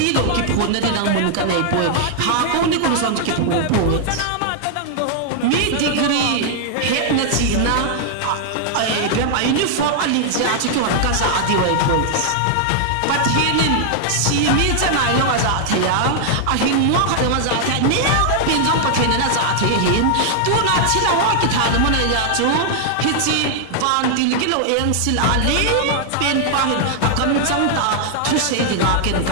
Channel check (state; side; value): different; both; correlation -0.01